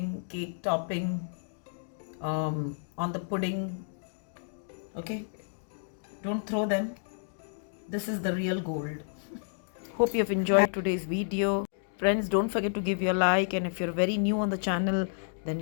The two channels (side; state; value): right; silent; digital silence